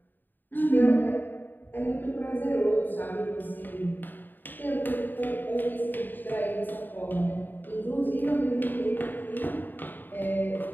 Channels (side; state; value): right; late; 0.091 ms